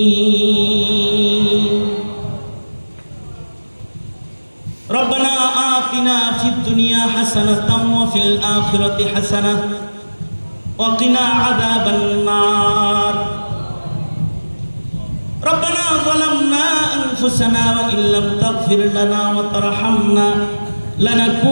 রব্বানা আতিনা ফিদ দুনিয়া হাসানাতাও ওয়া ফিল আখিরাতি হাসানাহ ওয়া কিনা আযাবান নার। ربنا ظلمنا أنفسنا وإن لم تغفر لنا وترحمنا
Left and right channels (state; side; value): inverted; both; correlation -1.00